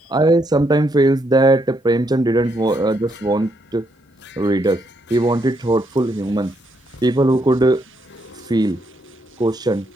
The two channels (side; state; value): both; normal; correlation 0.76